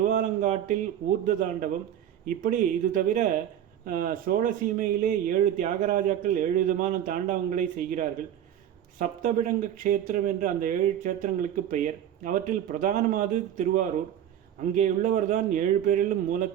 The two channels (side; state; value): left; quieter; 10.5 dB